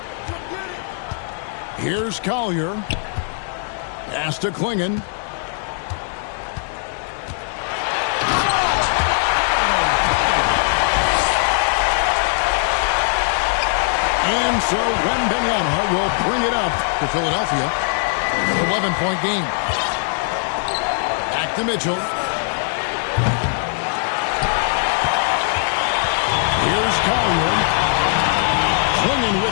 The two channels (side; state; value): right; silent; 66 dB below the other